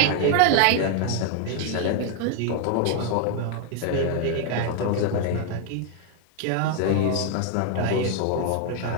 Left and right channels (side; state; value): both; different; correlation 0.00